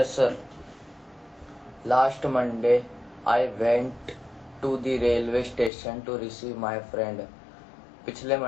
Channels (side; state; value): right; drops out; at 5.7 s